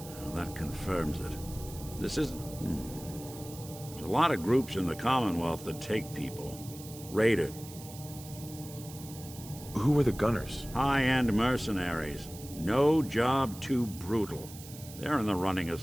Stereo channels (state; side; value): noise; right; hiss, 16 dB below the sound